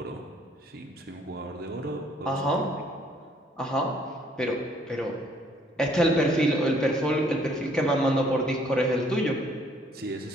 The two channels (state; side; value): normal; both; correlation 0.63